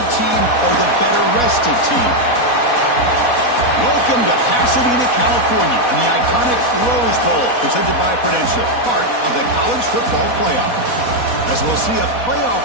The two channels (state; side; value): late; right; 4.1 ms